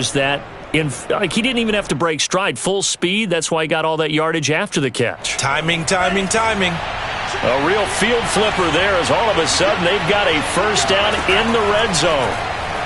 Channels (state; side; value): identical; both; correlation 1.00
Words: that, he didn't even have to break stride. Full speed, that's why he got all that yardage after the catch. Timing, timing, timing. A real field flipper there as all of a sudden they've got a first down in the red zone.